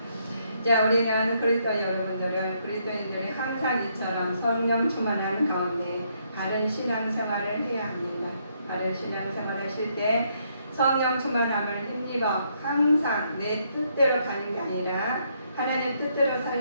자, 우리는 그리스도 그리스도인들이 항상 이처럼 성령 충만하는 가운데 바른 신앙생활을 해야 합니다. 바른 신앙생활 하실 때 성령 충만함을 힘입어 항상 내 뜻대로 가는 게 아니라 하나님 뜻대로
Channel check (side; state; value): both; inverted; correlation -0.73